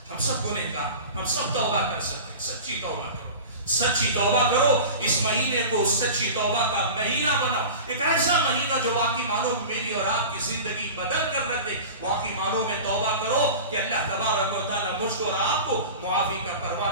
ہم سب کو نہیں کہا, ہم سب توبہ کر سکتے ہیں. سچی توبہ کرو, سچی توبہ کرو. اس مہینے کو سچی توبہ کا مہینہ بناؤ, ایک ایسا مہینہ جو واقعی معنوں میری اور آپ کی زندگی بدل کر رکھ دے. واقعی معنوں میں توبہ کرو کہ اللہ تبارک و تعالیٰ مجھ کو اور آپ کو معافی کا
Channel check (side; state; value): both; inverted; correlation -0.34